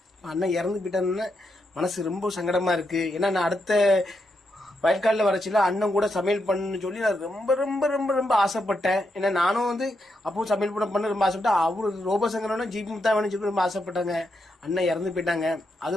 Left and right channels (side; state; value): both; normal; correlation 0.83